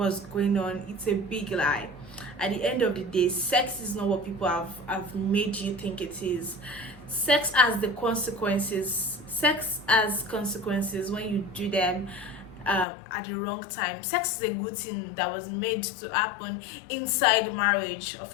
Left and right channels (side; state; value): right; drops out; at 12.9 s